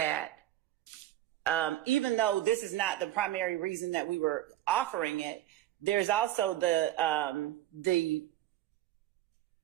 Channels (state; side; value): quieter; left; 14.0 dB